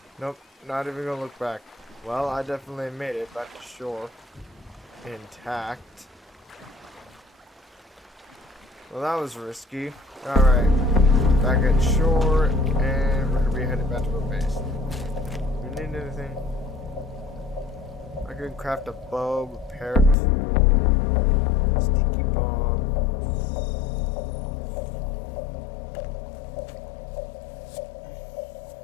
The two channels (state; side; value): drops out; right; at 20.2 s